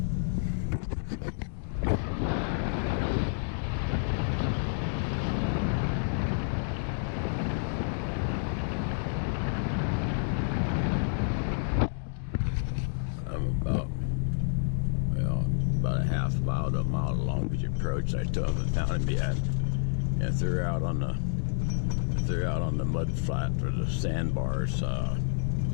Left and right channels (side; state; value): right; silent; digital silence